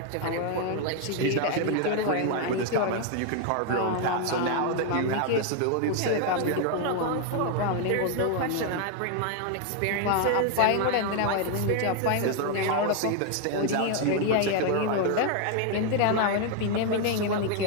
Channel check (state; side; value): different; both; correlation 0.00